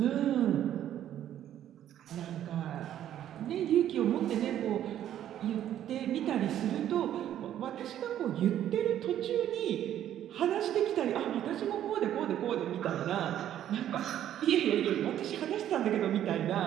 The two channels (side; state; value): left; quieter; 11.2 dB